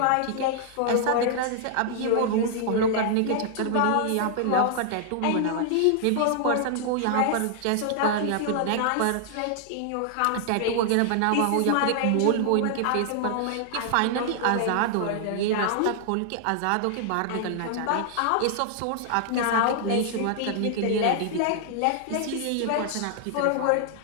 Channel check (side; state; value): both; different; correlation -0.01